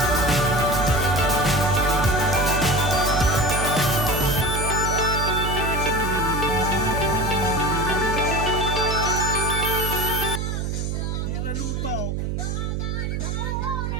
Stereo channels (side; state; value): right; noise; hum, 2 dB below the sound